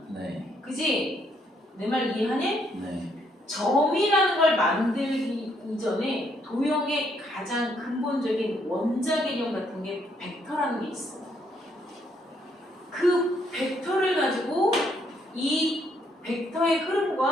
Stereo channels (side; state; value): both; normal; correlation 0.71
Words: 네. 그지? 내 말 이해하니? 네. 점이라는 걸 만들기 이전에 도형의 가장 근본적인 원자 개념 같은 게 벡터라는 게 있어. 그 벡터를 가지고 이 벡터의